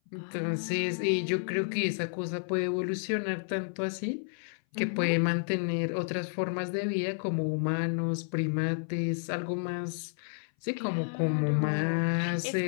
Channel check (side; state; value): right; silent; 57 dB below the other